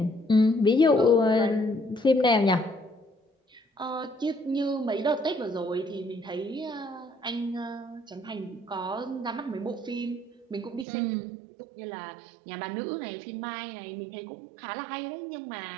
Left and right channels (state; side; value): drops out; left; at 10.9 s